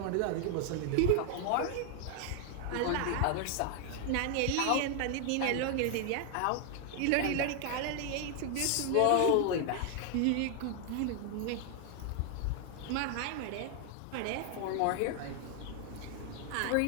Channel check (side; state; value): both; different; correlation 0.00